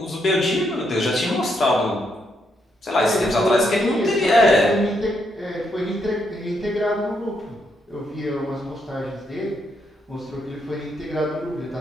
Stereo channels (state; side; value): normal; both; correlation 0.77